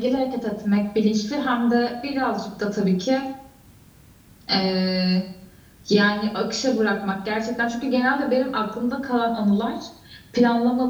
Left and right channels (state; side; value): identical; both; correlation 1.00